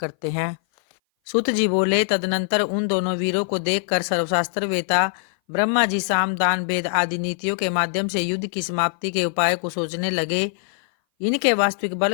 हैं। सुत जी बोले, तदनंतर उन दोनों वीरों को देखकर सर्वशास्त्र वेता ब्रह्मा जी साम दान भेद आदि नीतियों के माध्यम से युद्ध की समाप्ति के उपाय को सोचने लगे। इनके वास्तविक बल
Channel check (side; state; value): right; silent; 59 dB below the other